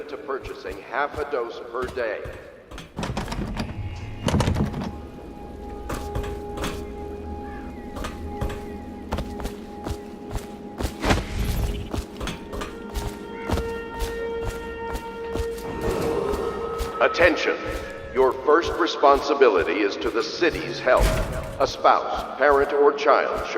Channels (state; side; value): identical; both; correlation 1.00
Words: to purchasing half a dose per day. Attention. Your first responsibility is to the city's health. A spouse, parent, or child